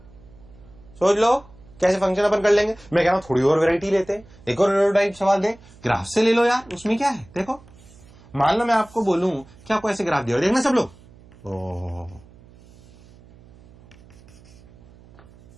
सोच लो कैसे फंक्शन अपन कर लेंगे। मैं कह रहा हूं थोड़ी और वैरायटी लेते हैं, एक और टाइप सवाल दे, ग्राफ से ले लो यार, उसमें क्या है। देखो मान लो मैं आपको बोलूं कि आपको ऐसे ग्राफ दिया, देखना सब लोग,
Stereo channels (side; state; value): right; noise; hum, 24 dB below the sound